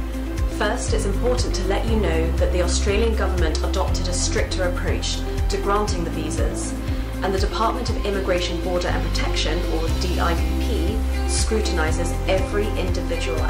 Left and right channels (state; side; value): identical; both; correlation 1.00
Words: First, it's important to let you know that the Australian government adopted a stricter approach to granting the visas, and the Department of Immigration, Border and Protection, or DIBP, scrutinises every individual